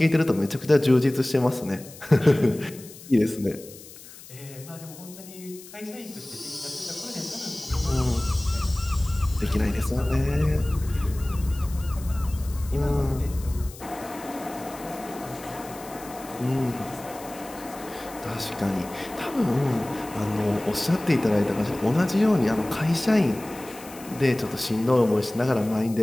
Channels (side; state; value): left; noise; hiss, 18 dB below the sound